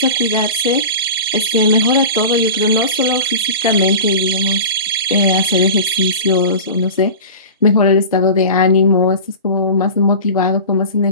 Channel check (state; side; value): inverted; both; correlation -0.33